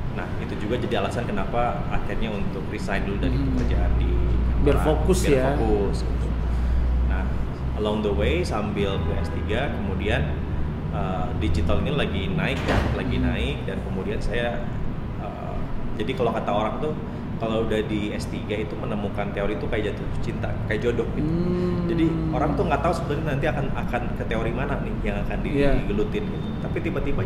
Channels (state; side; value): identical; both; correlation 1.00